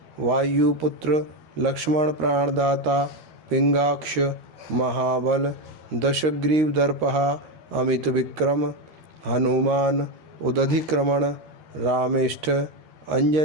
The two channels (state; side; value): late; left; 13 ms